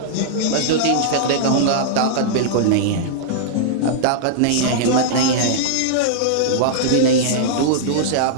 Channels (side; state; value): both; different; correlation -0.02